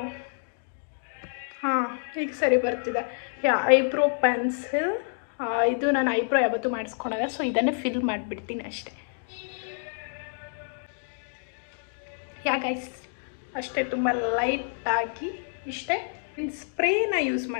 ಹಾಂ, ಈಗ ಸರಿ ಬರ್ತಿದೆ. ಯಾ ಐಬ್ರೋ ಪೆನ್ಸಿಲ್. ಇದು ನಾನು ಐಬ್ರೋ ಯಾವತ್ತೂ ಮಾಡಿಸ್ಕೊಳಲ್ಲ, ಸೊ ಇದನ್ನೇ ಫಿಲ್ ಮಾಡಿಬಿಡ್ತೀನಿ ಅಷ್ಟೇ. ಯಾ ಗೈಸ್ ಅಷ್ಟೇ, ತುಂಬ ಲೈಟಾಗಿ ಇಷ್ಟೇ. ಇನ್ನು ಸ್ಪ್ರೇನ ಯೂಸ್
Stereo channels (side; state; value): right; silent; digital silence